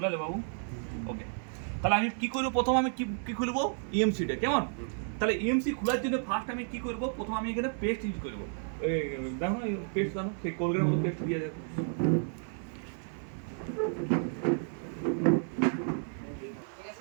বাবু ওকে তাহলে আমি কি করব প্রথম আমি কি খুলবো ইএমসিটা কেমন তাহলে ইএমসি খোলার জন্য ফার্স্ট আমি কি করব প্রথম আমি এখানে পেস্ট ইউজ করব দেখো না পেস্ট জানো সেই কোলগেটের মতো পেস্ট দিয়ে যাবে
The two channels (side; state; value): left; silent; 57 dB below the other